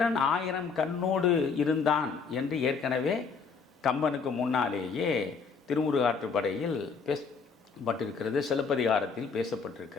1000 கண்ணோடு இருந்தான் என்று ஏற்கனவே கம்பனுக்கு முன்னாலேயே திருமுருகாற்றுப்படையில் பேசப்பட்டிருக்கிறது, சிலப்பதிகாரத்தில்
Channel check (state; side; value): quieter; right; 5.2 dB